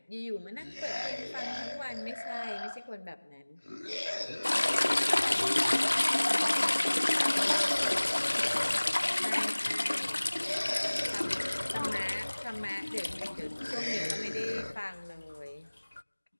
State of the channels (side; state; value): both; inverted; correlation -1.00